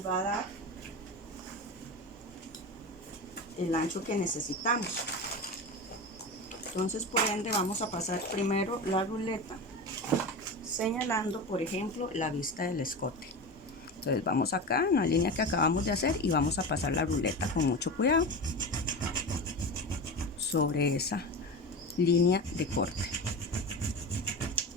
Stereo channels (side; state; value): both; normal; correlation 0.25